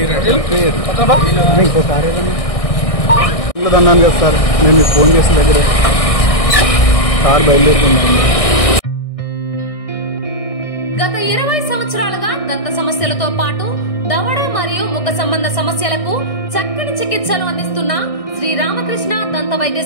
ఇంకో కారు అన్నాను కదా సార్ నేను మీకు ఫోన్ చేసిన దగ్గరే కారు బయలుదేరుతున్నాను. గత 20 సంవత్సరాలుగా దంత సమస్యలతో పాటు దవడ మరియు ముఖ సంబంధ సమస్యలకు చక్కని చికిత్సలు అందిస్తున్న శ్రీ రామకృష్ణ దంత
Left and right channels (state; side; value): late; right; 1.6 ms